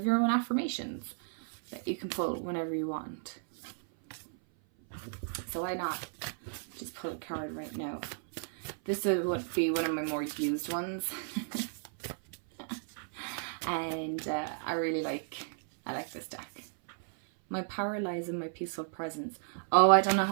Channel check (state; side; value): silent; left; 55 dB below the other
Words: your own affirmations that you can pull whenever you want. So why not just pull a card right now? This would be one of my more used ones. And I like this deck. My power lies in my peaceful presence. Oh, I don't know